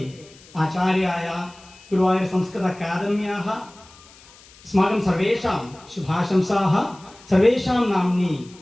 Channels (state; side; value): noise; left; hiss, 24 dB below the sound